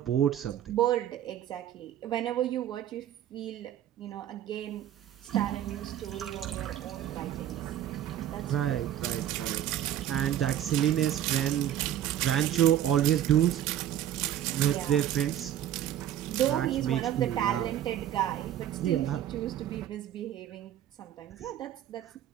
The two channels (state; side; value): quieter; left; 11.2 dB